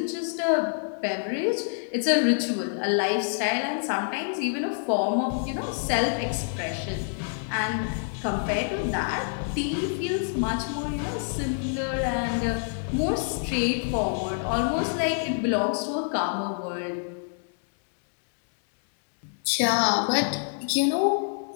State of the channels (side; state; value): right; silent; digital silence